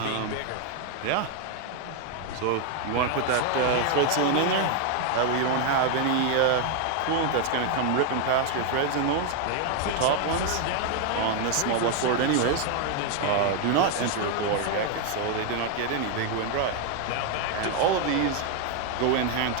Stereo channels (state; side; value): different; both; correlation 0.01